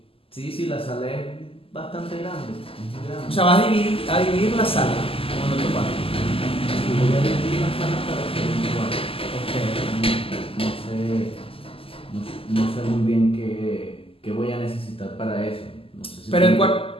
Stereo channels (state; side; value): late; right; 0.27 ms